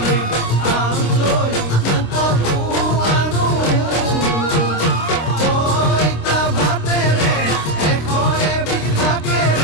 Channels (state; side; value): late; right; 26 ms